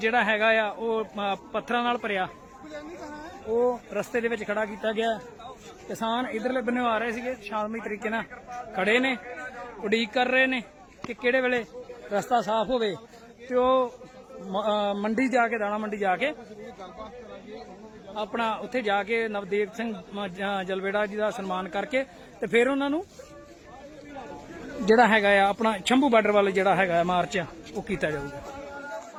ਹੈਗਾ ਆ ਉਹ ਪੱਥਰਾਂ ਨਾਲ ਭਰਿਆ ਉਹ ਰਸਤੇ ਦੇ ਵਿੱਚ ਖੜਾ ਕੀਤਾ ਗਿਆ। ਕਿਸਾਨ ਇਧਰਲੇ ਬੰਨੇ ਆ ਰਹੇ ਸੀਗੇ, ਸ਼ਾਂਤਮਈ ਤਰੀਕੇ ਨਾਲ ਖੜੇ ਨੇ, ਉਡੀਕ ਕਰ ਰਹੇ ਨੇ ਕਿ ਕਿਹੜੇ ਵੇਲੇ ਰਸਤਾ ਸਾਫ਼ ਹੋਵੇ ਤੇ ਉਹ ਮੰਡੀ ਜਾ ਕੇ, ਦਾਣਾ ਮੰਡੀ ਜਾ ਕੇ ਆਪਣਾ ਉੱਥੇ ਜਾ ਕੇ ਨਵਦੇਵ ਸਿੰਘ ਜਲਵੇੜਾ ਜੀ ਦਾ ਸਨਮਾਨ ਕਰਕੇ ਤੇ ਫਿਰ ਉਹਨਾਂ ਨੂੰ ਜਿਹੜਾ ਹੈਗਾ ਆ ਆਪਣਾ ਸ਼ੰਭੂ ਬਾਰਡਰ ਵੱਲ ਜਿਹੜਾ ਹੈਗਾ ਮਾਰਚ ਉਹ ਕੀਤਾ ਜਾਊਗਾ।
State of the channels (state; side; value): identical; both; correlation 1.00